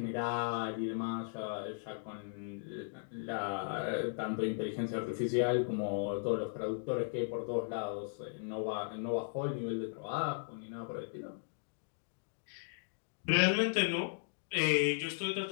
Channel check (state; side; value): silent; right; digital silence